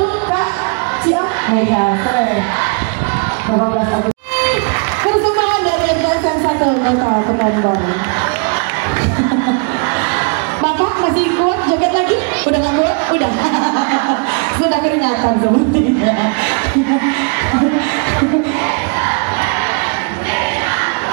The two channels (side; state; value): left; quieter; 37.6 dB